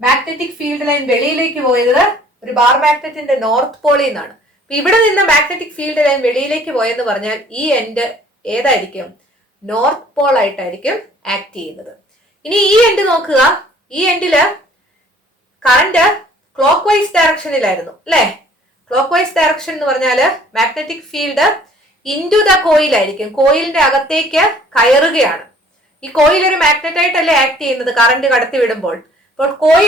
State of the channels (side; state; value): both; normal; correlation 0.55